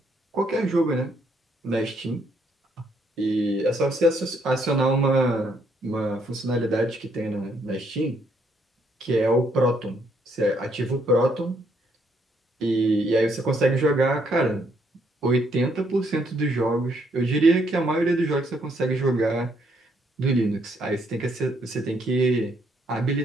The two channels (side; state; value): both; normal; correlation 0.71